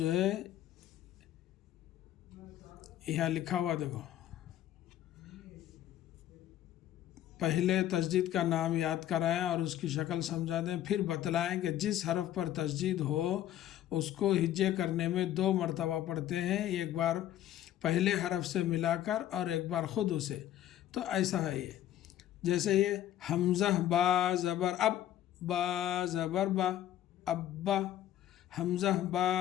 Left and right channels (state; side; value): quieter; right; 12.2 dB